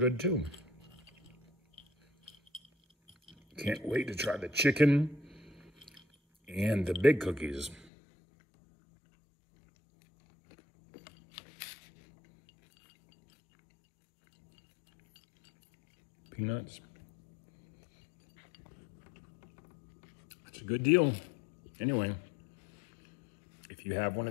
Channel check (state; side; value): drops out; right; at 7.9 s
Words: too. Can't wait to try the chicken and the big cookies. Peanuts. It's a good deal. Anyway, if you have one